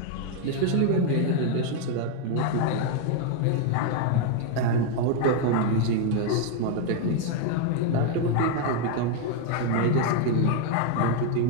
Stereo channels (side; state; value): both; different; correlation 0.01